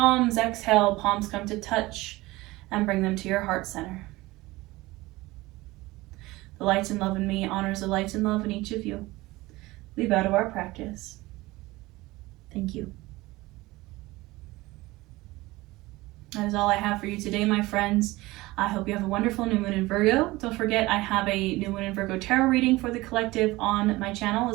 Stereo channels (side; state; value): left; quieter; 19.9 dB